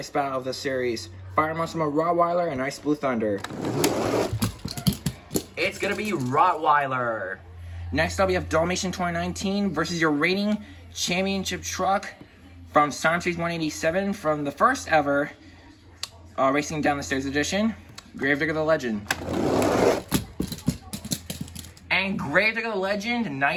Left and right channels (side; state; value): both; identical; correlation 1.00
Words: battle of the series, Fire Monster Rottweiler and Ice Blue Thunder. It's gonna be Rottweiler. Next up, we have Dalmatian 2019 versus your reigning championship truck from Sonic Series 187 from the first ever Racing Down the Stairs edition, Gravedigger the Legend. And Gravedigger the Legend,